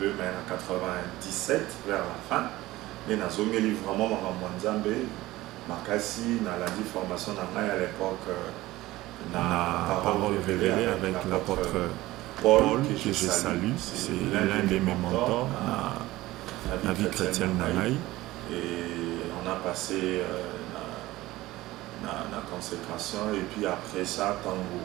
mais en 97, vers la fin. Mais dans le livre vraiment Mwanzambe, Makasi, dans la formation à l'époque, la parole révélée avec l'apôtre Paul, que je salue, c'est l'un de mes mentors dans la vie chrétienne Nanaï. Et on a passé la consécration, et puis après ça, tant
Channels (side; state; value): left; quieter; 17.7 dB